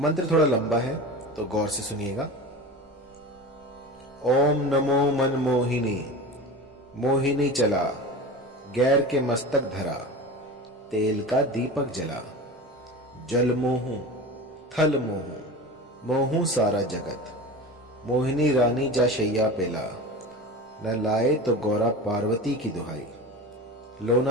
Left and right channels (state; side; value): normal; both; correlation 0.31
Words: थोड़ा लंबा है तो गौर से सुनिएगा। ओम नमो मनमोहिनी, मोहिनी चला, गैर के मस्तक धरा, तेल का दीपक जला, जल मोहू थल मोहू, मोहू सारा जगत, मोहिनी रानी जा शैया पेला, न लाए तो गौरा पार्वती की दुहाई,